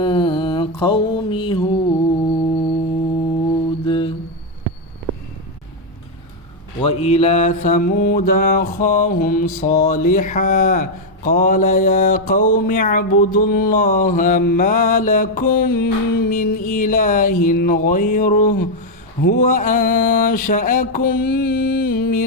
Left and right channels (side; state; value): both; normal; correlation 0.01